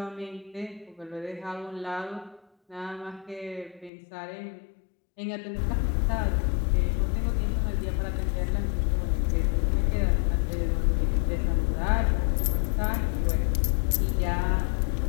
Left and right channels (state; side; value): drops out; right; at 3.9 s